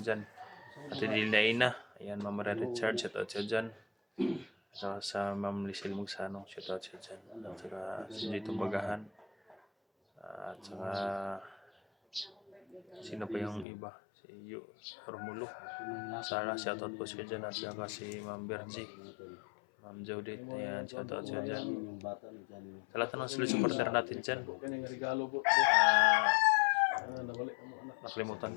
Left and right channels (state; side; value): drops out; right; at 13.7 s